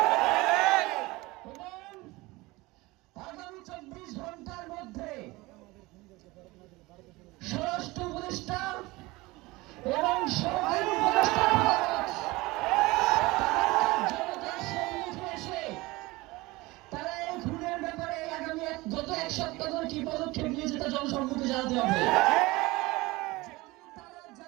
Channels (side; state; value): left; quieter; 21.5 dB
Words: এবং আগামী 24 ঘন্টার মধ্যে স্বরাষ্ট্র উপদেষ্টা এবং সরকারি উপদেষ্টা জনতার সম্মুখে এসে তারা এই খুনের ব্যাপারে আগামী গত এক সপ্তাহ ধরে কি পদক্ষেপ নিয়েছে তা জনসম্মুখে জানাতে হবে। যদি তারা